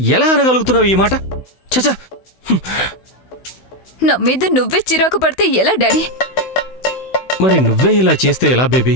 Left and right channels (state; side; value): late; right; 16 ms